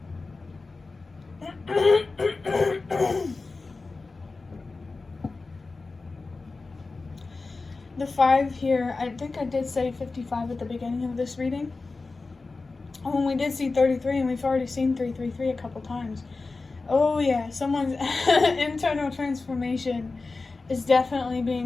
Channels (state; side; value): quieter; right; 3.8 dB